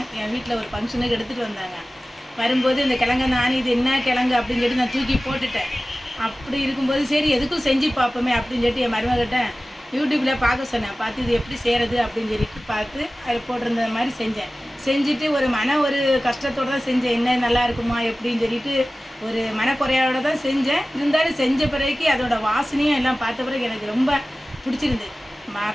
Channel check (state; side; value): normal; both; correlation 0.97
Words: என் வீட்டில் ஒரு ஃபங்க்ஷனுக்கு எடுத்துகிட்டு வந்தாங்க. வரும்போது இந்த கிழங்கை நான் இது என்ன கிழங்கு அப்படின்னு சொல்லிட்டு நான் தூக்கி போட்டுட்டேன். அப்படி இருக்கும்போது சரி எதுக்கும் செஞ்சு பார்ப்போமே அப்படின்னு சொல்லிட்டு என் மருமகிட்ட யூடியூப்பில் பார்க்க சொன்னேன். பார்த்து இது எப்படி செய்கிறது அப்படின்னு சொல்லிட்டு பார்த்து அது போட்டிருந்த மாதிரி செஞ்சுட்டு ஒரு கஷ்டத்தோடு தான் செஞ்சேன். என்ன நல்லா இருக்குமா எப்படின்னு சொல்லிட்டு ஒரு மனக்குறையோடு தான் செஞ்சேன். இருந்தாலும் செஞ்ச பிறகு அதோட வாசனையும் எல்லாம் பார்த்த பிறகு எனக்கு ரொம்ப பிடிச்சிருந்து.